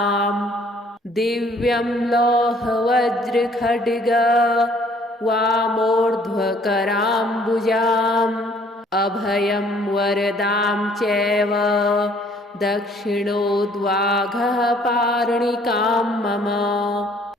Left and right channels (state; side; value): normal; both; correlation 0.60